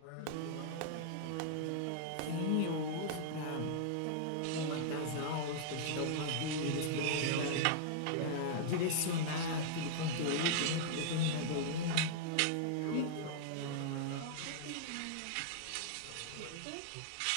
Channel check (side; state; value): both; different; correlation -0.01